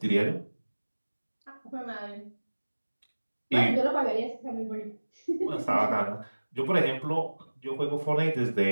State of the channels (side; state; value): both; inverted; correlation -1.00